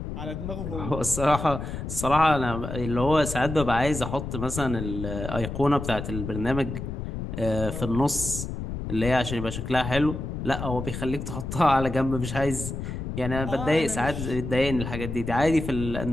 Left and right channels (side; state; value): left; noise; rumble, 6 dB below the sound